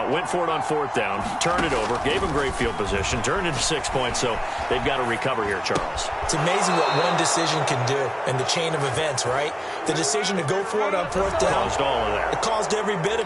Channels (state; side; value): identical; both; correlation 1.00